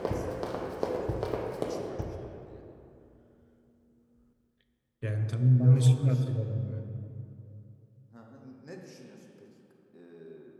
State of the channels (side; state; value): both; identical; correlation 1.00